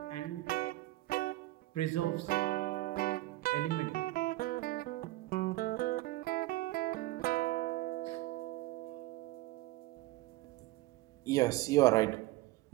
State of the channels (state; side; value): quieter; left; 18.0 dB